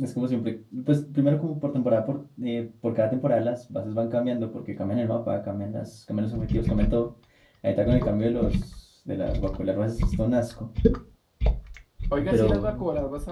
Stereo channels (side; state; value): both; identical; correlation 1.00